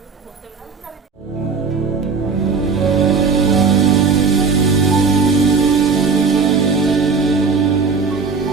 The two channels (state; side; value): quieter; left; 5.0 dB